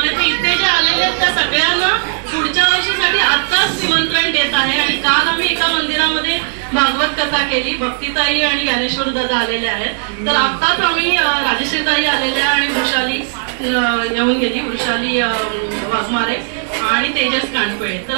आहे. तर इथे जे आलेले आहेत त्या सगळ्यांना पुढच्या वर्षीसाठी आत्ताच निमंत्रण देत आहे. आणि काल आम्ही एका मंदिरामध्ये भागवत कथा केली, भक्तीताई आणि ज्ञानेश्वर दादा आलेले आहेत. तर आत्ताच आम्ही राजश्रीताई आलेल्या आणि वृषाली येऊन गेली, वृषाली वाघमारे आणि तेजस कांडपळे. तर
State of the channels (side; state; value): left; silent; digital silence